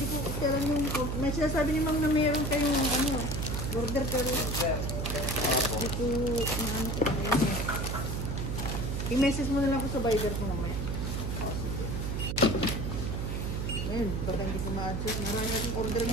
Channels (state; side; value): noise; right; hum, 2 dB below the sound